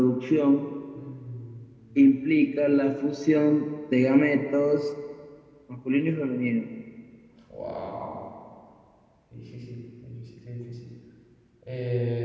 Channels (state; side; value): identical; both; correlation 1.00